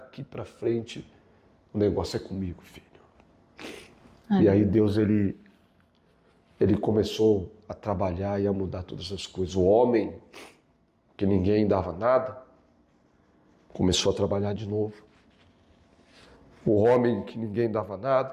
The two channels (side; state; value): both; identical; correlation 1.00